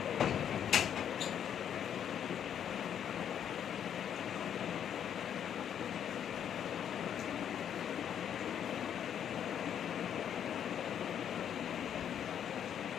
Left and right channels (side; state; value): right; quieter; 9.1 dB